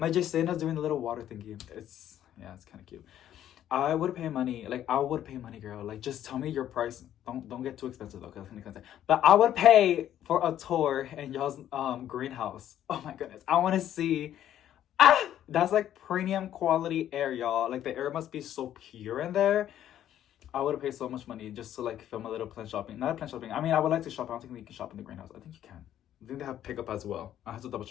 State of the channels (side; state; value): right; quieter; 11.3 dB